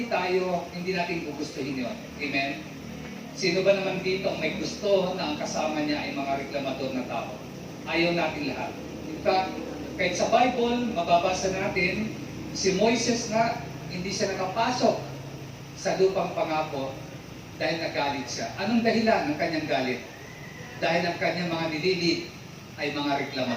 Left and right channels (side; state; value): both; identical; correlation 1.00